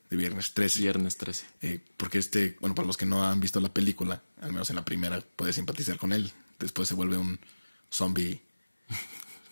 Viernes 13. Viernes 13. Porque bueno, para los que no han visto la película, al menos en la primera, puedes simpatizar con él. Después se vuelve un zombie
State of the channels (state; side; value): inverted; both; correlation -1.00